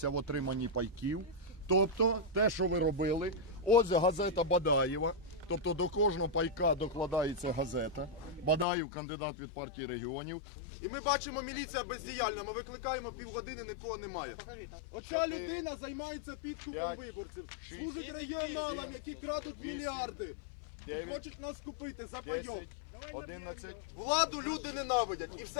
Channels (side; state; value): right; drops out; at 8.7 s